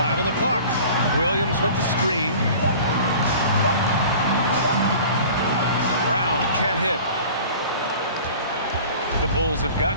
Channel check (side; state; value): both; inverted; correlation -0.43